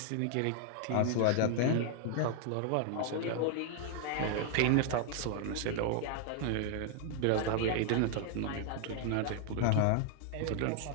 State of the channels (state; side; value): different; both; correlation 0.00